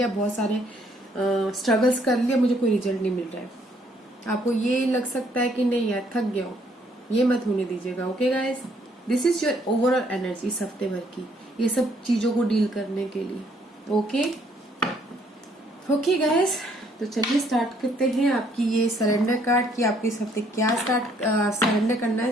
बहुत सारे स्ट्रगल्स कर लिया, मुझे कोई रिजल्ट नहीं मिल रहा है। आपको ये लग सकता है कि नहीं यार थक गया हूँ, ये मत होने दीजिएगा, okay guys. This is your overall energy इस हफ्ते भर की, ये सब चीजों को डील करने के लिए, ओके। ओके गाइस, तो चलिए स्टार्ट करते हैं आपकी ये सरेंडर कार्ड की, आपको इस हफ्ते क्या सरेंडर करना है,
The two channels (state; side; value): normal; both; correlation 0.66